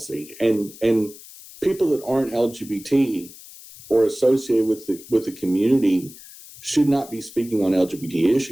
And people that aren't LGBT or associated with the community should not be speaking on LGBT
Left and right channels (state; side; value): noise; left; hiss, 18 dB below the sound